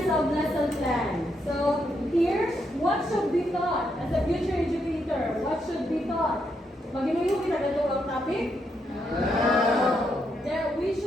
of lesson plan. So here, what should be taught as a future educator? What should be taught? Maginuyo kita ganito ang topic? No. There, we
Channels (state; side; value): normal; both; correlation 0.79